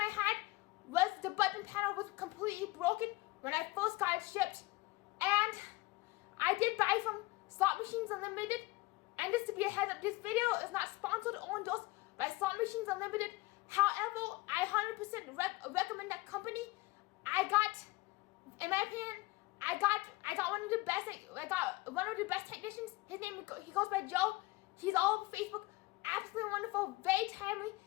had was the button panel was completely broken when I first got it shipped. And I did buy from Slot Machines Unlimited. And just to be a heads up, this video is not sponsored or endorsed by Slot Machines Unlimited. However, I 100% recommend that company. In my opinion, I got one of the best technicians. He goes by Joe. He's all over Facebook. Absolutely wonderful, very timely.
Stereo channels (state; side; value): quieter; right; 21.5 dB